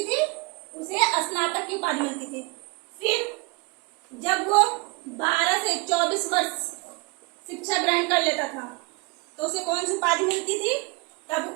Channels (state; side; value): quieter; left; 28.0 dB